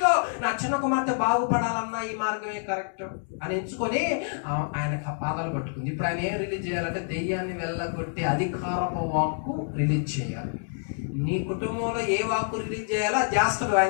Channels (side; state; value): right; silent; digital silence